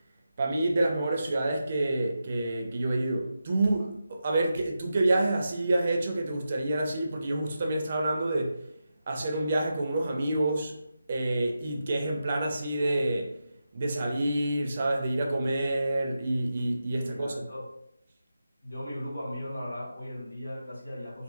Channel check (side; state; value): both; inverted; correlation -0.89